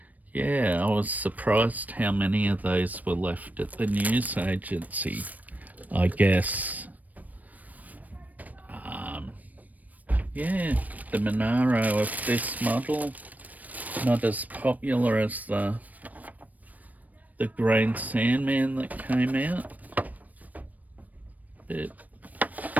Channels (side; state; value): left; late; 0.077 ms